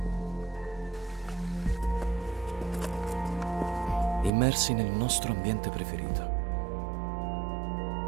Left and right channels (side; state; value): left; drops out; at 4.3 s